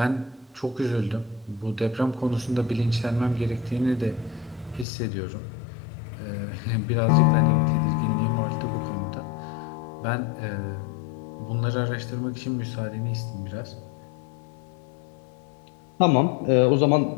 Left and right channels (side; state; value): right; drops out; at 4.9 s